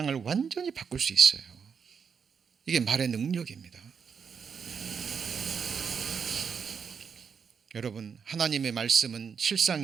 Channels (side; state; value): left; quieter; 6.4 dB